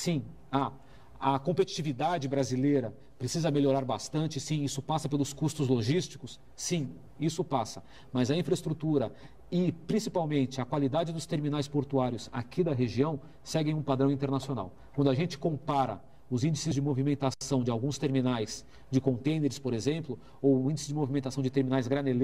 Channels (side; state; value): both; identical; correlation 1.00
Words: há. A competitividade brasileira precisa melhorar bastante? Sim, isso passa pelos custos logísticos? Sim, isso passa. Mas a infraestrutura e, principalmente, a qualidade dos terminais portuários aqui da região seguem um padrão internacional. Quando a gente compara os índices de movimentação de alguns terminais de contêineres, por exemplo, ou o índice de movimentação de terminais